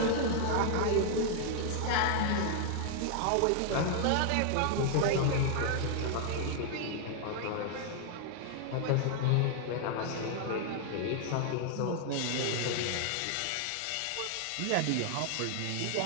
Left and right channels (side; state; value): both; different; correlation 0.00